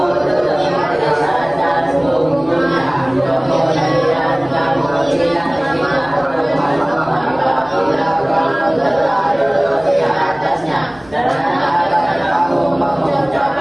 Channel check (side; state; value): right; noise; hum, 25 dB below the sound